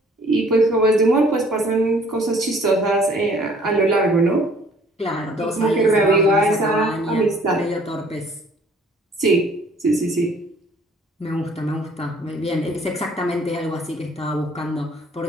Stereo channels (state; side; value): normal; both; correlation 0.57